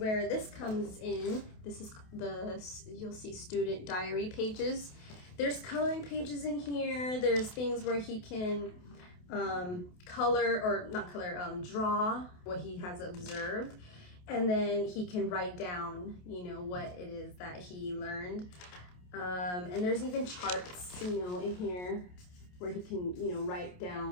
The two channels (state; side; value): late; right; 28 ms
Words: this comes in. This is you'll see student diary pages. There's coloring pages in here. There's things where he can draw what he has observed. And then he can write down, you know, what it is that he learned. And there's even charts, you know, in here where he can, you know, write